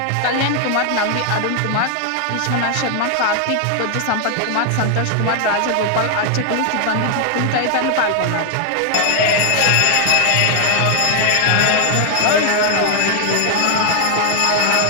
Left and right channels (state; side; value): different; both; correlation 0.00